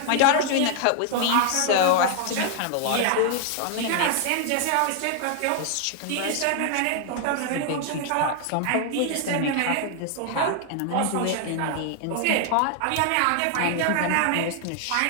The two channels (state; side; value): different; both; correlation 0.00